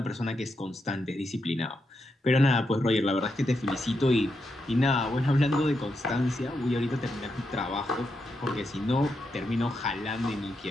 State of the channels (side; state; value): both; normal; correlation 0.83